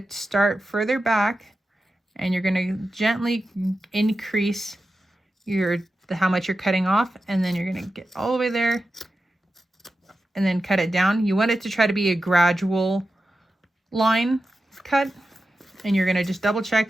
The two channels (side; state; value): both; normal; correlation 0.92